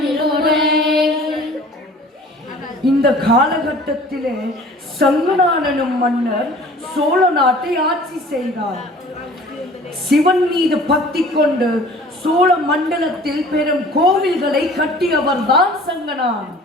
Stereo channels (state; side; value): normal; both; correlation 0.48